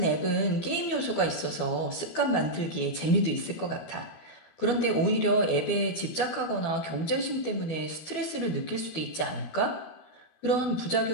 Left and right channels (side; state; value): right; late; 12 ms